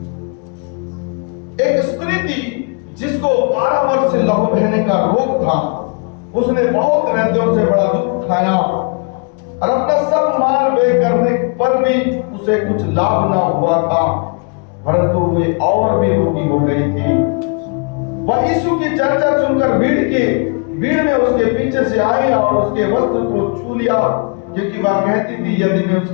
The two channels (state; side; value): quieter; right; 35.3 dB